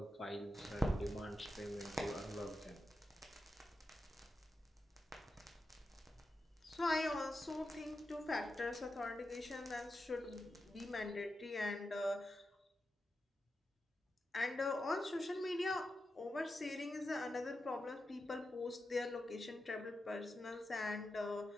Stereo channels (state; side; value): normal; both; correlation 0.89